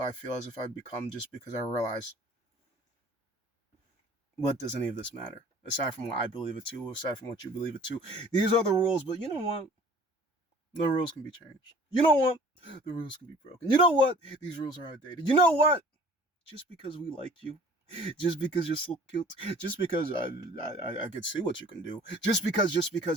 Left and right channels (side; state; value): both; normal; correlation 0.50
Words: I feel as if I've become, just because I realize, what does any of this matter? Aside from what I believe it to, aside from what you believe it to. These are the rules, but you know what? The rules can be changed. You know what? The rules can be broken. You know what? These rules are outdated. You know what? Just because we like you, just because you're so cute, just because I could see what you can do, just because